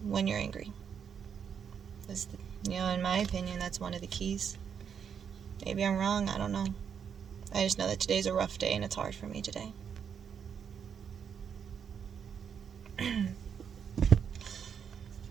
when you're angry. In my opinion, that's one of the keys. Maybe I'm wrong, I don't know. I just know that today's a rough day and it's hard for me today.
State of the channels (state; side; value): quieter; left; 7.5 dB